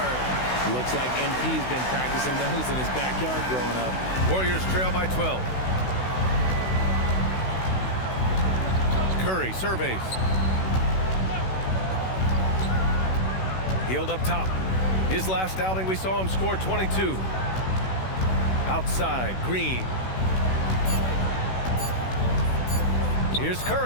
Looks like MP's been practicing those in his backyard growing up. Warriors trail by 12. Curry surveys. Hield up top. His last outing, we saw him score 22. Outside, Green. Here's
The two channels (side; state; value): right; late; 16 ms